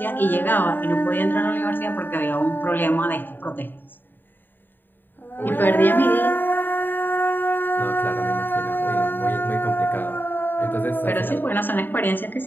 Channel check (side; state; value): right; late; 0.093 ms